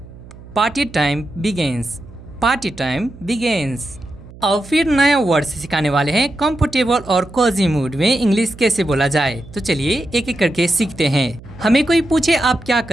Party time begins, party time begins. अब फिर नया वर्ड सिखाने वाले हैं कंफर्टेबल और कोजी मूड में इंग्लिश कैसे बोला जाए। तो चलिए एक एक करके सीखते हैं। हमें कोई पूछे आप क्या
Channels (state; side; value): noise; right; hum, 19 dB below the sound